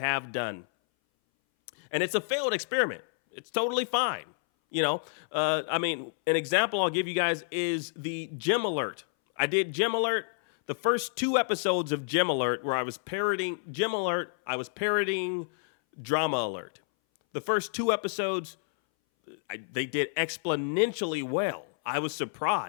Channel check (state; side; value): silent; right; 58 dB below the other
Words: done, and it's a failed experiment. It's totally fine. An example I'll give you guys is the Gym Alert. I did Gym Alert. The first 2 episodes of Gym Alert where I was parodying Gym Alert, I was parodying Drama Alert. The first 2 episodes, they did exponentially well. I was